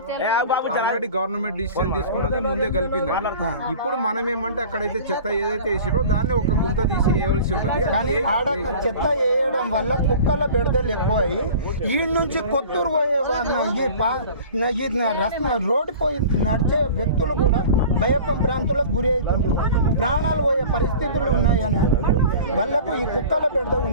ఆల్రెడీ గవర్నమెంట్ డిసిషన్ తీసుకున్నది ముందే కలిపింది. ఇప్పుడు మనం ఏమంటే అక్కడైతే చెత్త ఏదైతే వేసిరో దాన్ని ఒక గుంత తీసి వేయవలసి ఉంటుంది. కానీ ఆడ చెత్త వేయడం వల్ల కుక్కల బెడదలు ఎక్కువ అయ్యి ఈ నుంచి కొత్తూరు పోయే రోడ్డు పోయి నడిచే వ్యక్తులు కూడా భయపం ప్రాంతాలకు గురి అవుతుండ్రు, ప్రాణాలు పోయే పరిస్థితులు ఉన్నాయని అంటున్నారు. వాళ్ళకు ఈ కుక్కల బెడద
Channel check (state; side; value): inverted; both; correlation -0.41